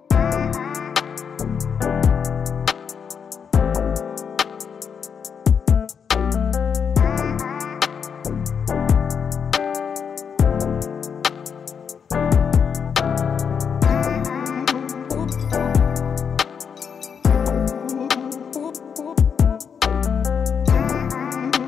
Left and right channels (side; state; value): right; quieter; 6.8 dB